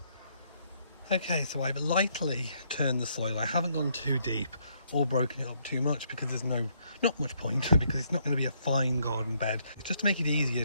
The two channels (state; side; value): inverted; both; correlation -0.72